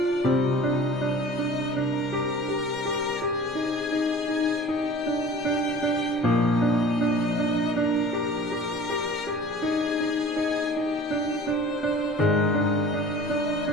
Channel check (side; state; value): both; normal; correlation 0.43